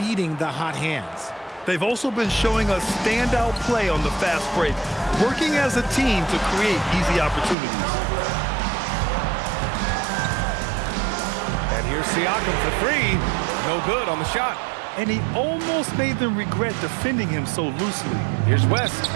the hot hands. They've also been showing us standout play on the fast break, working as a team to create easy opportunities. And here's Siakam for 3. No good on the shot. And he almost made them regret defending him so loosely. Here's West.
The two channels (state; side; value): drops out; left; at 7.6 s